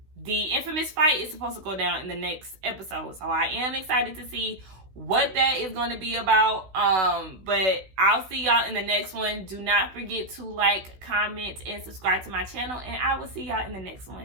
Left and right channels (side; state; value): left; late; 16 ms